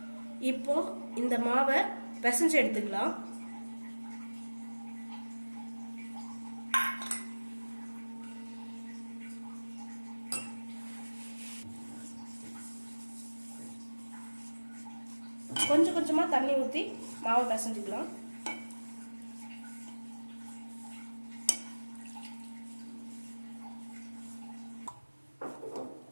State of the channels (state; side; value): inverted; both; correlation -1.00